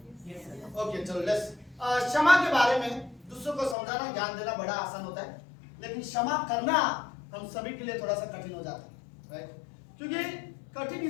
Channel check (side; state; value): right; drops out; at 3.8 s